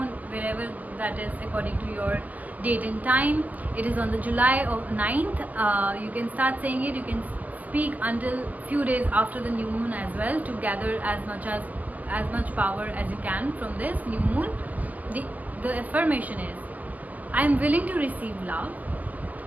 wherever that is according to your date and time. It is on the July 9th. You can start saying it. You can speak until few days after the new moon as well to gather as much power as you can from this new moon. The affirmation is, I am willing to receive love.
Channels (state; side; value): late; left; 0.080 ms